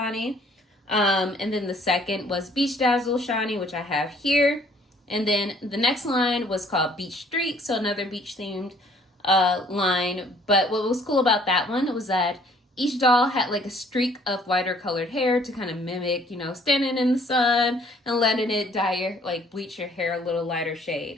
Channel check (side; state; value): both; normal; correlation 0.59